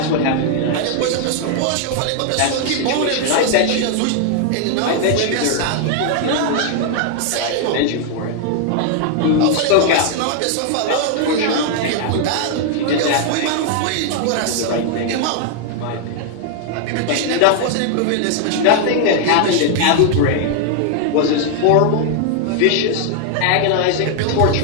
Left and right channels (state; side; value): different; both; correlation 0.00